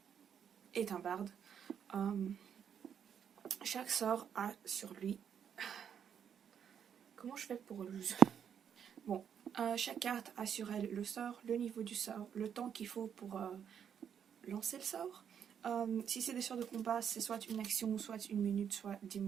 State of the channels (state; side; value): quieter; left; 8.2 dB